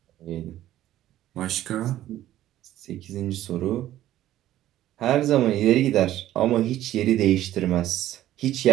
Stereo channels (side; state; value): left; quieter; 13.5 dB